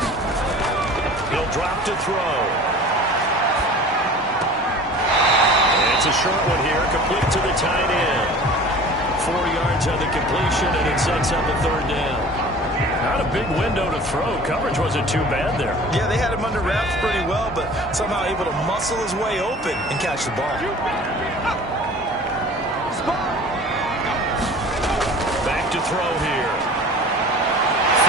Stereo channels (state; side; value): normal; both; correlation 0.43